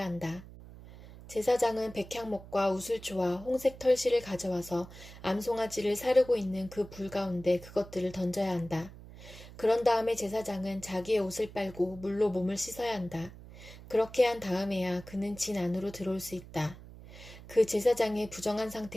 한다. 제사장은 백향목과 우슬초와 홍색 털실을 가져와서 암송아지를 사르고 있는 그 불 가운데 그것들을 던져야 한다. 그런 다음에 제사장은 자기의 옷을 빨고 물로 몸을 씻어야 한다. 그렇게 한 다음에야 그는 진 안으로 들어올 수 있다. 그 제사장의 부정한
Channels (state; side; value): noise; right; hum, 17 dB below the sound